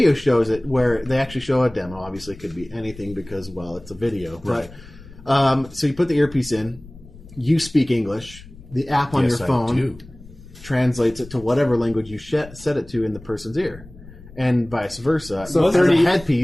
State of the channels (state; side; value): noise; left; rumble, 19 dB below the sound